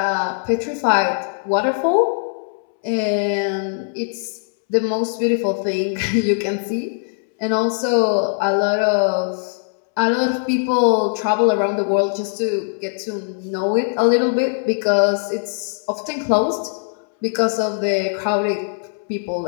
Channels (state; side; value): silent; right; 65 dB below the other